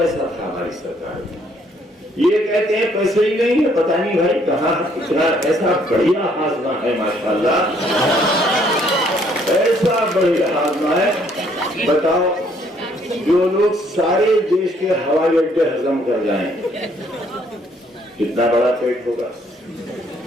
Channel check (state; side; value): normal; both; correlation 0.66